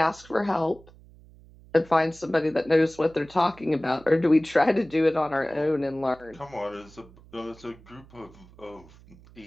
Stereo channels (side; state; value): right; noise; hum, 24 dB below the sound